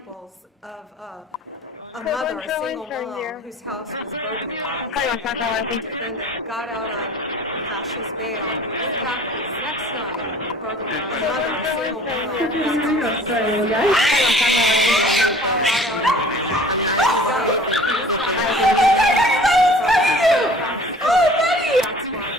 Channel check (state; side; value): normal; both; correlation 0.48